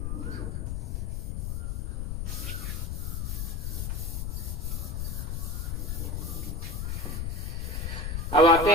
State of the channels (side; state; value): left; noise; rumble, 2 dB below the sound